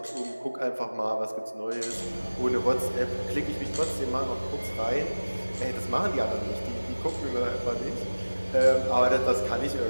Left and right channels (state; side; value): inverted; both; correlation -1.00